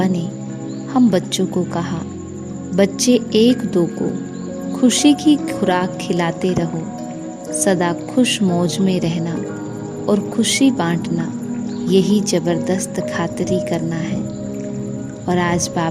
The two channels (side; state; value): both; identical; correlation 1.00